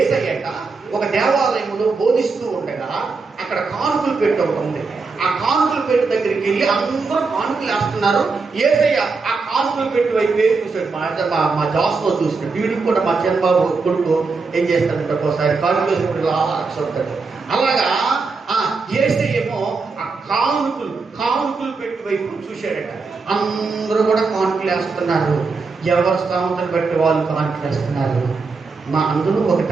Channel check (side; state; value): left; quieter; 4.4 dB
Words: ఒక దేవాలయంలో బోధిస్తూ ఉండగా అక్కడ కానుకలు పెట్టి ఒకటి ఉంది. ఆ కానుకలు పెట్టి దగ్గరికి వెళ్ళి అందరూ కానుకలు వేస్తున్నారు. యేసయ్య ఆ కానుకలు పెట్టి వైపు చూసాడు. మా జాస్లో చూసినాడు. వీడికి కూడా మా చంద్రబాబు కొడుకు ఏం చేస్తాడంటే ఒకసారి కానుకలు వేసినప్పుడు ఆలోచిస్తాడు. అలాగా యేసయ్య ఏమో ఆ కానుకలు పెట్టి వైపు చూశాడట. అందరూ కూడా కానుకలు వేస్తున్నారు. ఎవరు స్థామతను బట్టి వాళ్ళు కానుకలు వేస్తున్నారు. అందులో ఒక